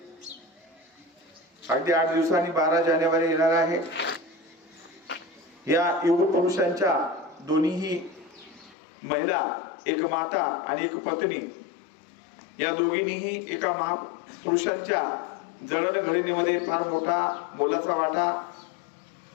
अगदी 8 दिवसांनी 12 जानेवारी येणार आहे। या युग पुरुषांच्या दोन्हीही महिला, एक माता आणि एक पत्नी, या दोघींनीही एका महापुरुषांच्या जडणघडणीमध्ये फार मोठा मोलाचा वाटा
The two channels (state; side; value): drops out; right; at 8.8 s